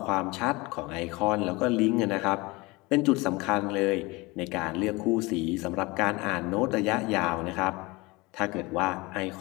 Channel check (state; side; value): quieter; right; 23.5 dB